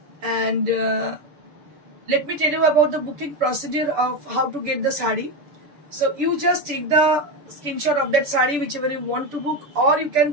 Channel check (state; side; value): late; left; 6.8 ms